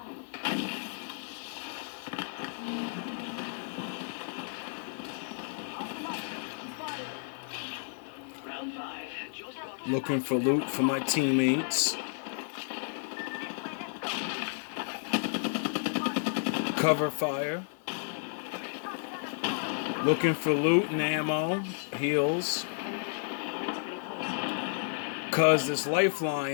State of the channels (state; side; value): silent; right; digital silence